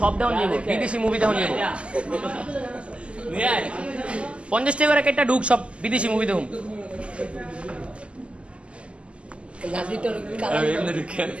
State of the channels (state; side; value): late; left; 0.056 ms